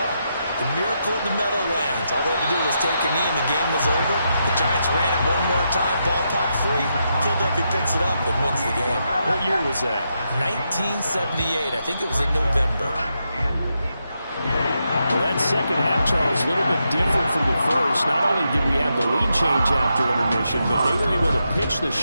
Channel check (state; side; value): inverted; both; correlation -0.83